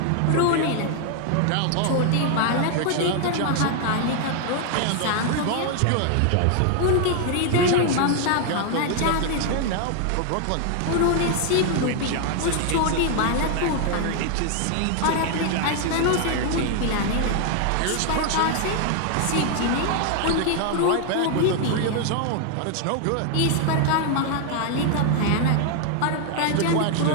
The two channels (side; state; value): both; different; correlation 0.00